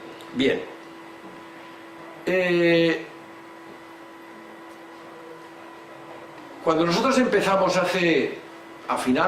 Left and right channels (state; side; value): identical; both; correlation 1.00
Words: Bien. Cuando nosotros empezamos a